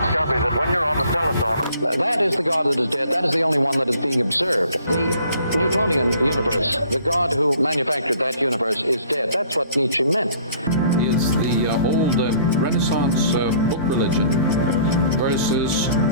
that when you're on the telephone... That is the God that is dead. That is the only one that is being observed. The Newtonian universe, the God who manufactured that universe is dead. That's what Nietzsche meant. It's the old Renaissance book religion versus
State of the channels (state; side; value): inverted; both; correlation -0.56